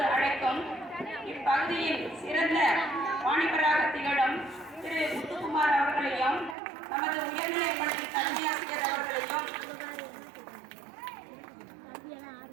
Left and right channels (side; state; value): left; drops out; at 6.6 s